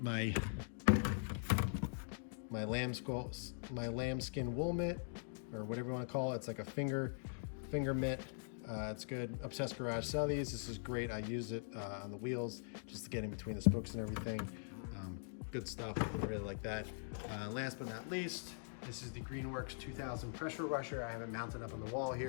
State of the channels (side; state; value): right; silent; digital silence